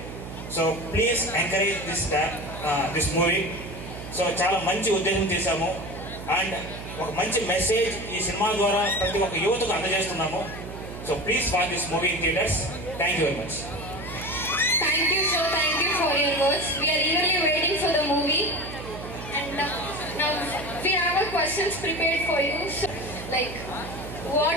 So please encourage this movie. So చాలా మంచి ఉద్దేశం చేశాము అండ్ ఒక మంచి మెసేజ్ ఈ సినిమా ద్వారా ప్రతి ఒక్క యువతకు అందజేస్తున్నాము. So please watch this movie in theatres. Thank you very much. Thank you, sir. Thank you for your words. We are eagerly waiting for the movie. And now we have our questions prepared for you. So, like,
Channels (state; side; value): noise; right; hum, 10 dB below the sound